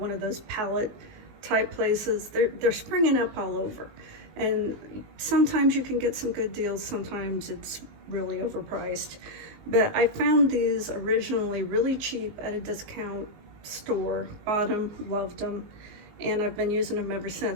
of those pallet type places. They're springing up all over, and sometimes you can get some good deals, sometimes it's really overpriced. But I found these originally really cheap at a discount store, bought them, loved them, and I've been using them ever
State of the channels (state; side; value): late; left; 19 ms